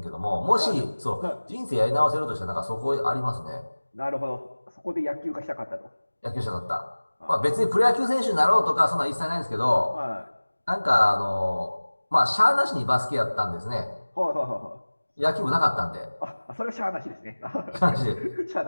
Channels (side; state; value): both; inverted; correlation -1.00